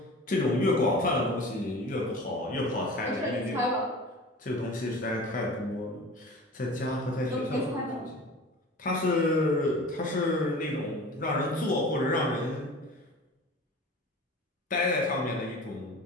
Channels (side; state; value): both; normal; correlation 0.38